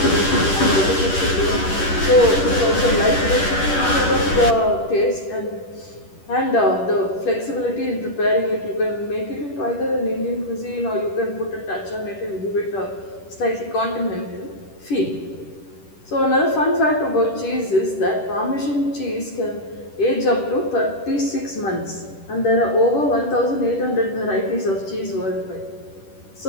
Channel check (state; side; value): late; right; 10 ms